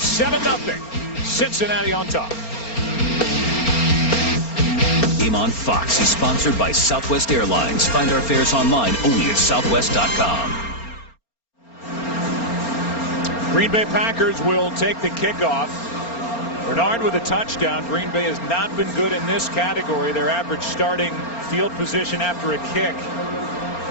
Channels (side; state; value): right; late; 4.3 ms